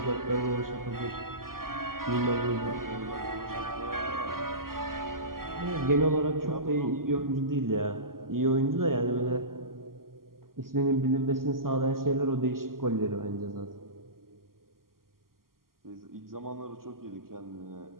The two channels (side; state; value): left; late; 0.92 ms